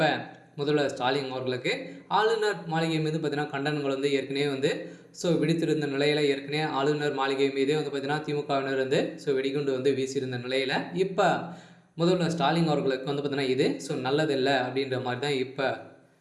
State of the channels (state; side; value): identical; both; correlation 1.00